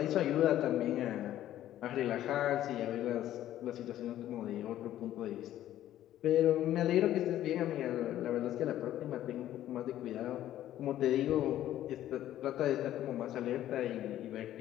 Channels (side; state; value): right; quieter; 12.7 dB